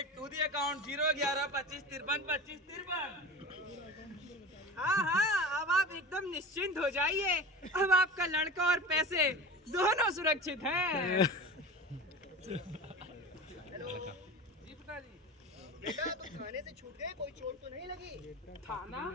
to the account 01125532553। हाँ, अब आप एकदम निश्चिंत हो जाइए। अब आपका लड़का और पैसे दोनों सुरक्षित हैं। हेलो जी पिताजी। बेटा तुम थाने से छूट गए, कोई चोट तो नहीं लगी? थाना?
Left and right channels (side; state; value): both; normal; correlation 0.32